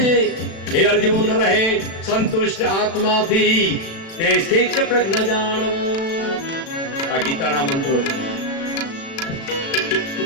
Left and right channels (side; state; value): right; late; 36 ms